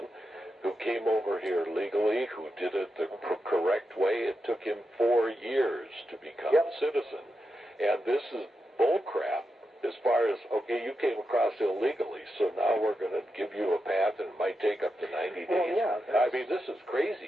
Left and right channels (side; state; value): both; normal; correlation 0.87